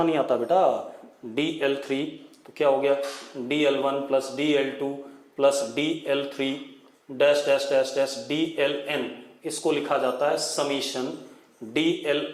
नहीं आता बेटा, dl3 तो क्या हो गया, dl1 plus dl2 plus dl3 dash dash dash dash dln, इसको लिखा जाता है summation dli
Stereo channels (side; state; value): both; identical; correlation 1.00